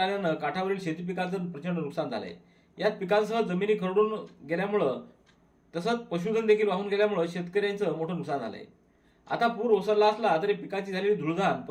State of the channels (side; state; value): both; identical; correlation 1.00